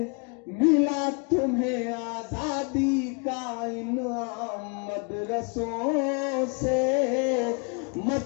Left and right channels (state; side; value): quieter; right; 36.2 dB